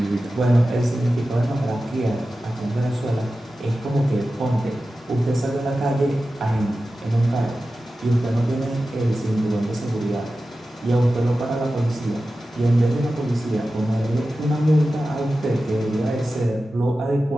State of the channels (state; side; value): normal; both; correlation 0.94